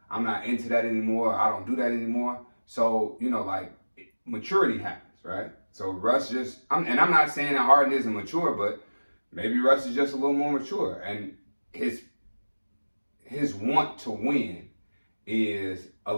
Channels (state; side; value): inverted; both; correlation -1.00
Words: I'm not into that anymore. I don't do that anymore. So like maturity happens, right? So Russ I'm not saying that Harden isn't mature, but maybe Russ is just a little more mature, and his want to win is